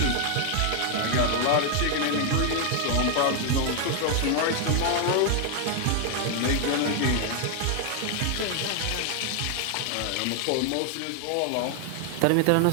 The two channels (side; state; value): both; different; correlation 0.00